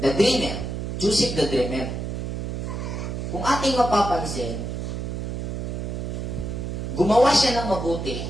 the dreamer, Joseph the dreamer. kung ating mapapansin, gumawa siya ng mabuti,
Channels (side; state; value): right; noise; hum, 4 dB below the sound